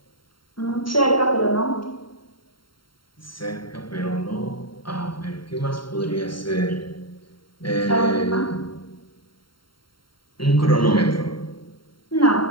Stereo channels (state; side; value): late; right; 0.73 ms